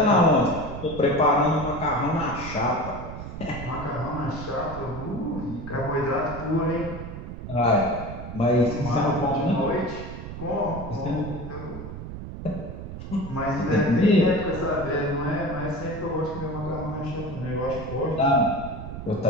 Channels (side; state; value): right; noise; rumble, 9 dB below the sound